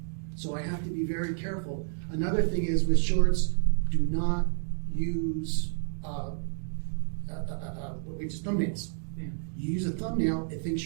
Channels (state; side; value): silent; left; digital silence